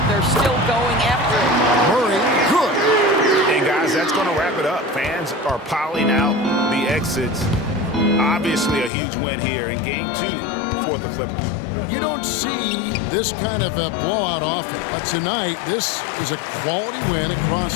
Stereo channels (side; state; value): right; drops out; at 8.9 s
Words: they're still going after it. Murray, good. And guys, that's going to wrap it up. Fans are piling out the exits. Obviously a huge win here in Game 2 for the Clippers. You don't see this kind of a blowout often, but tonight this is a quality win